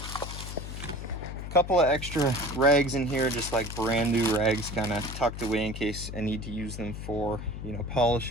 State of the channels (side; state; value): left; noise; hum, 8 dB below the sound